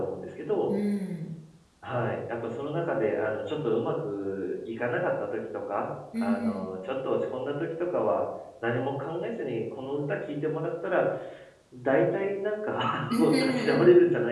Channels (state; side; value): identical; both; correlation 1.00